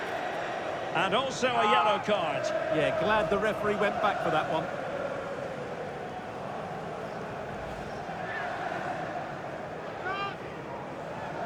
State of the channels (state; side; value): identical; both; correlation 1.00